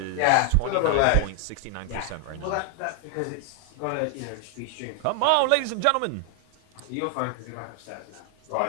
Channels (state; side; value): different; both; correlation 0.00